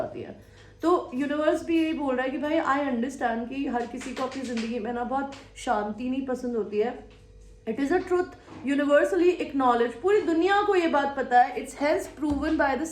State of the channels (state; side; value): identical; both; correlation 1.00